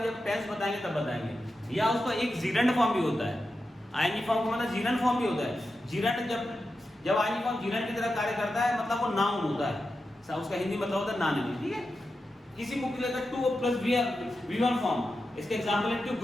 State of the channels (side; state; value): both; normal; correlation 0.90